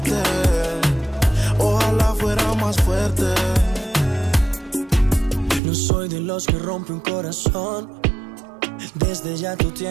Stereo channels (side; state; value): left; drops out; at 5.6 s